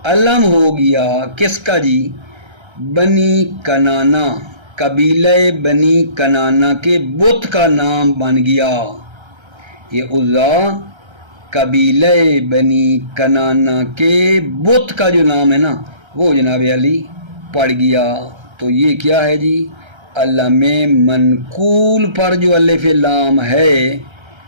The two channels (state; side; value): late; left; 1.3 ms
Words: علم ہو گیا کس کا جی؟ بنی کنانا، قبیلہ بنی کنانا کے بت کا نام بن گیا۔ یہ عزا قبیلہ بنی کنانا کے بت کا جو نام ہے نا وہ جناب علی پڑ گیا۔ تو یہ کیا ہے جی؟ علم منقول پر جو الف لام ہے،